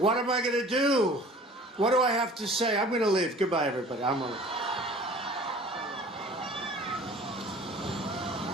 am I going to do? What do I have to say? I'm going to leave. Goodbye, everybody. I'm going to leave.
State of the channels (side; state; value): both; normal; correlation 0.46